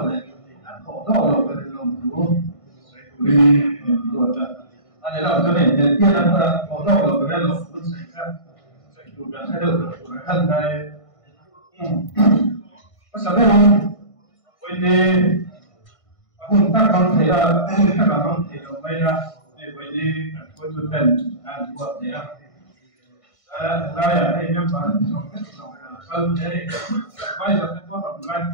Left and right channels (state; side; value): late; right; 1.5 ms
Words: này khổ đau lộc về lòng chú vì ruột anh ấy làm cho này tiên là khổ đau lộc về lòng chú xảy ra chủ đã thay đổi thân này có sao đây không vậy thì chúng ta không thấy là chúng ta không thấy là bây giờ vậy thì tôi chủ trần anh ruột này ra là đây nhóm bạn trong cái phần đấy bây giờ tôi có làm lại